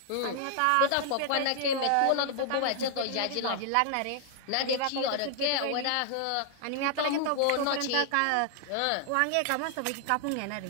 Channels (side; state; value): both; different; correlation 0.00